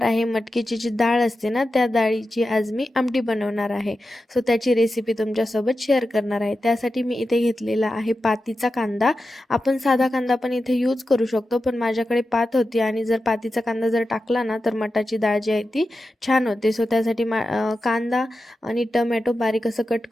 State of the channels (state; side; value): normal; both; correlation 0.91